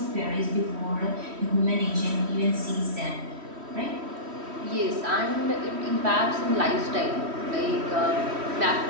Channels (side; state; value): left; late; 3.1 ms